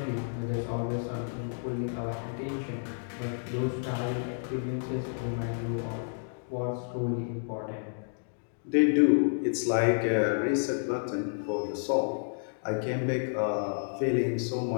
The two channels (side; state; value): right; silent; digital silence